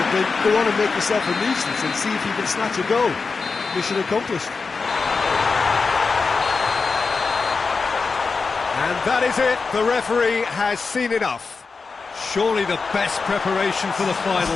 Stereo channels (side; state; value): right; quieter; 4.6 dB